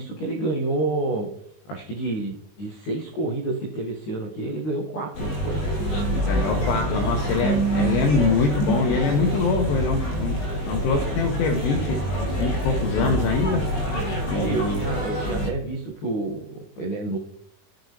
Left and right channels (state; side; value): late; right; 20 ms